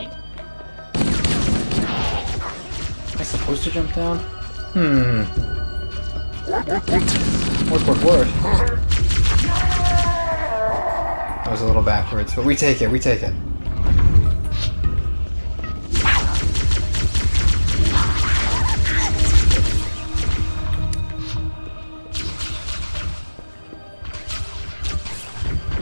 Am I supposed to jump down? Work. That was a little backwards, but we take it, we take it.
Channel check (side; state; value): both; inverted; correlation -1.00